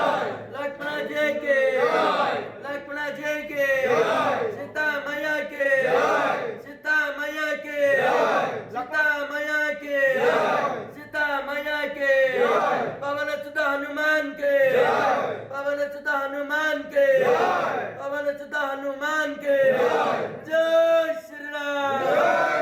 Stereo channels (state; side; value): identical; both; correlation 1.00